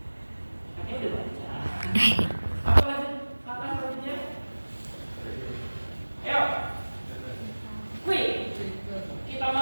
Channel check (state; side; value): inverted; both; correlation -1.00